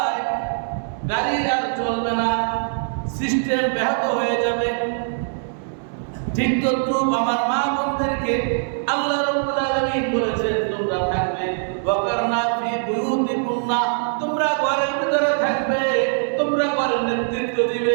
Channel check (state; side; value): silent; left; digital silence